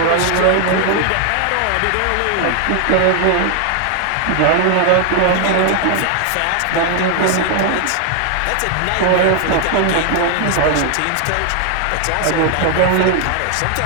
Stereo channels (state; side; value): different; both; correlation 0.00